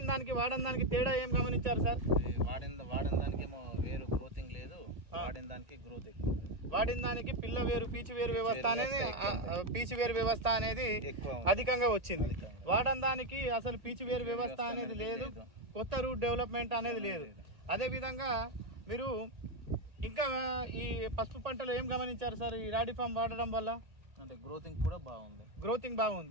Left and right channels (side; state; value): left; late; 1.8 ms